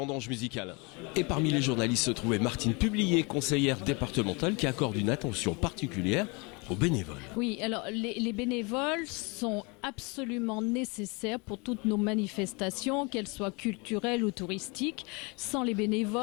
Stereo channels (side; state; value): right; quieter; 29.2 dB